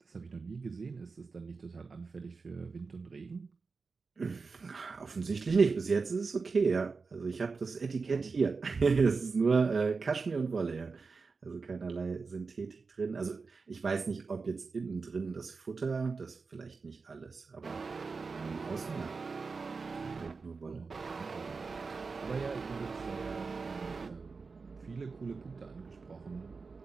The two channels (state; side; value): quieter; left; 4.5 dB